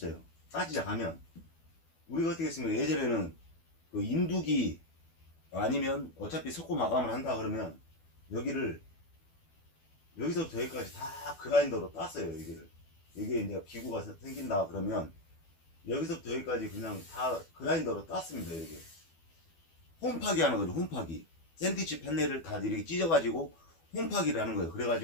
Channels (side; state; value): right; late; 12 ms